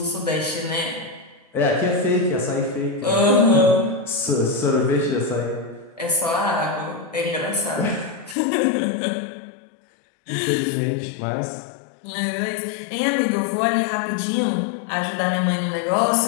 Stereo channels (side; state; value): right; drops out; at 8.3 s